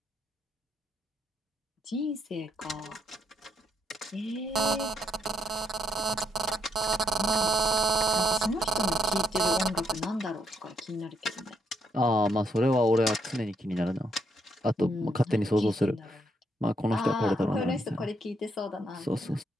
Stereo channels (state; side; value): normal; both; correlation 0.74